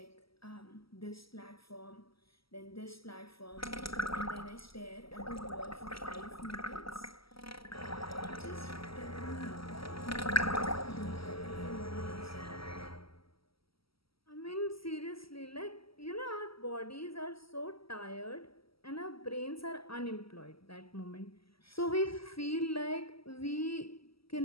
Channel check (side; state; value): right; late; 0.75 ms